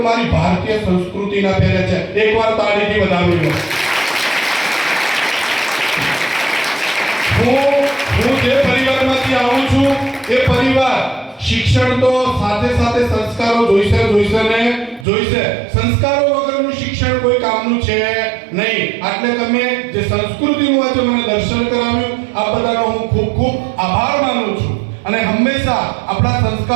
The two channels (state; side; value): drops out; left; at 15.1 s